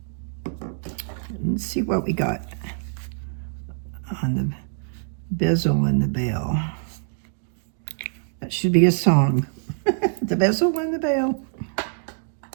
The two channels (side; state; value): left; silent; digital silence